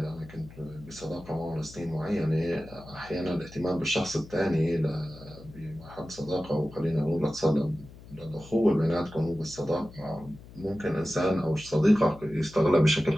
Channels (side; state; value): left; noise; hum, 19 dB below the sound